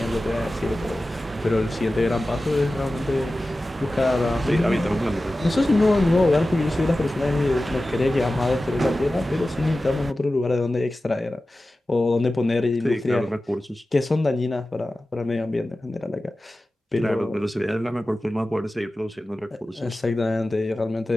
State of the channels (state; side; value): normal; both; correlation 0.95